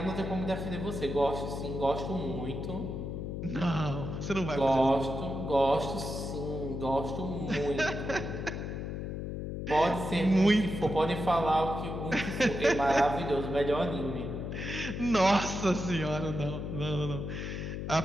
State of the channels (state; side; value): noise; left; hum, 5 dB below the sound